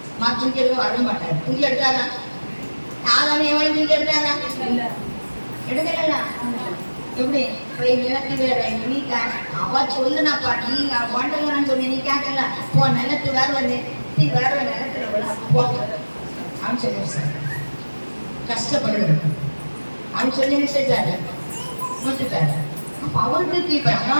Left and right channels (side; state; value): both; inverted; correlation -1.00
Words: தூக்கி எடுக்க வர மாட்டாரு. தூக்கி எடுத்தாரா? யாராலும் எவ்வளவு தூக்கி எடுத்தாரா? எடுக்கல. எப்படி போய் நிலத்து வேற நீ அவ சொல்லுனாப்பா, நீ வாண்டலான்னு சொன்ன, நீ கேட்கல போ நிலத்து வேற வந்து நீ வேற நிலத்துல போ அப்படின்னு சொல்லி சார் கஷ்டப்படுறது அப்படின்னு சொல்லி செஞ்சாரு, விட்டுட்டாரு. அப்ப அவருக்கு கீழ்படினா